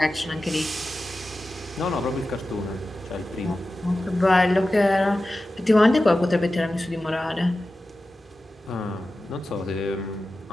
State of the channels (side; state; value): both; normal; correlation 0.94